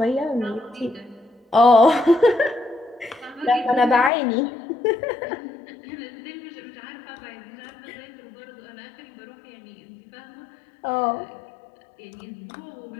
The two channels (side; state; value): right; drops out; at 4.1 s